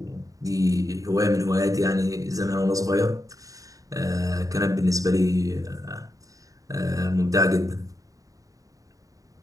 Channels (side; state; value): left; late; 0.16 ms